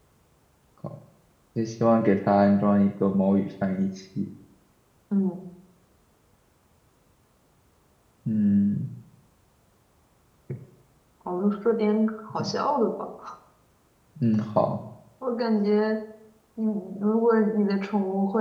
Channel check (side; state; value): both; identical; correlation 1.00